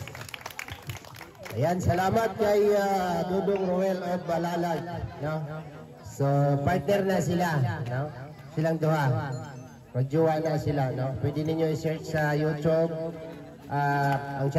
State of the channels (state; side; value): identical; both; correlation 1.00